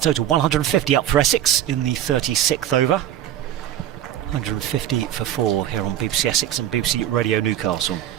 150 up for Essex in the 36th over. 150 for 4 here on BBC Essex and BBC Radio Newcastle.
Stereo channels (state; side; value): quieter; left; 11.6 dB